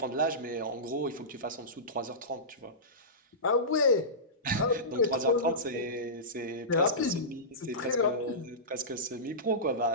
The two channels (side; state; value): both; normal; correlation -0.19